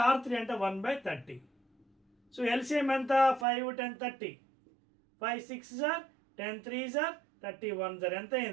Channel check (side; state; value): left; drops out; at 3.5 s